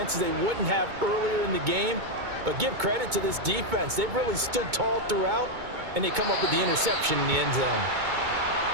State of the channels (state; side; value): late; left; 2.2 ms